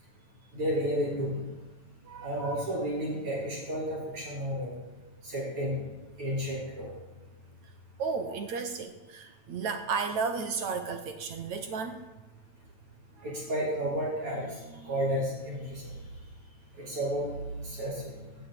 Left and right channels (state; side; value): late; left; 9.0 ms